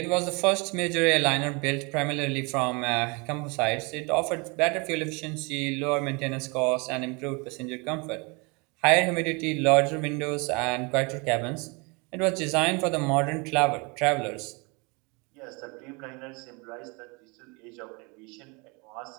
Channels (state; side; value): quieter; left; 29.6 dB